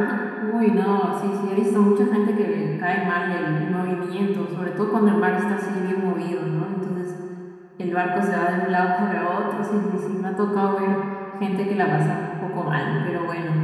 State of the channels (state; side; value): identical; both; correlation 1.00